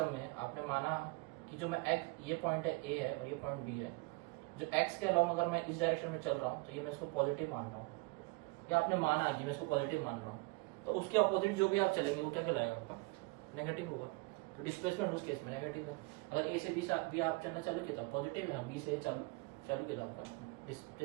में आपने माना कि जो मैं एक्स, ये पॉइंट है ए है और ये पॉइंट बी है, जो एक्स के अलावा अगर मैं इस डायरेक्शन में चल रहा हूँ तो ये मैं इसको पॉजिटिव मान रहा हूँ, या आपने माना कि मैं इसको पॉजिटिव मान रहा हूँ, तो उसके अपोजिट जो भी आप चलेंगे वो क्या कहलाएगा? आपका नेगेटिव होगा। तो डिस्प्लेसमेंट उस केस में नेगेटिव है। अगर ए से बी आप चलना चालू किया तो पॉजिटिव है, बी से चालू किया तो आपका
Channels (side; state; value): left; quieter; 26.4 dB